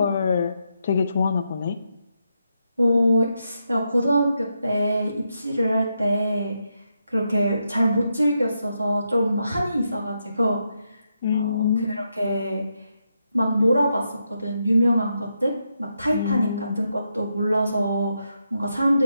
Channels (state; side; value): inverted; both; correlation -0.82